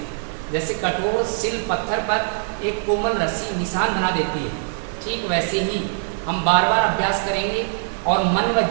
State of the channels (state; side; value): silent; left; digital silence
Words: जैसे कठोर सिल पत्थर पर एक कोमल रस्सी निशान बना देती है, ठीक वैसे ही हम बार बार अभ्यास करेंगे और मन व